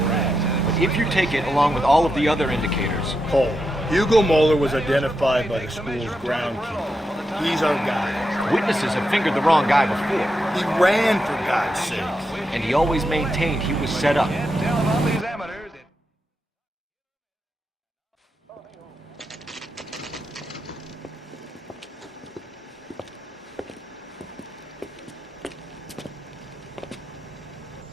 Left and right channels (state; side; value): normal; both; correlation 0.86